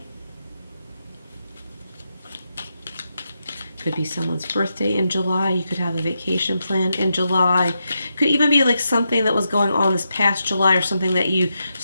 Could be someone's birthday in July. You could have a vacation plan in July. Could even be like something that was going on this past July or something that you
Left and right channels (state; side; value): inverted; both; correlation -0.85